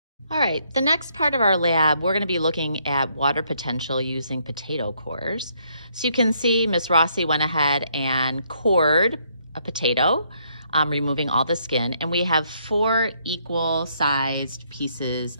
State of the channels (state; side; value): inverted; both; correlation -0.71